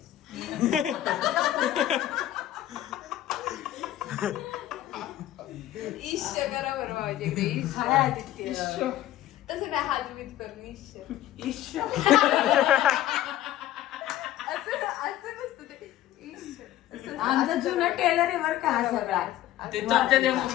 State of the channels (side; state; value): right; quieter; 13.4 dB